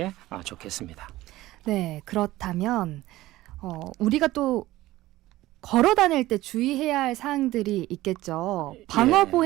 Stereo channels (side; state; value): left; quieter; 16.8 dB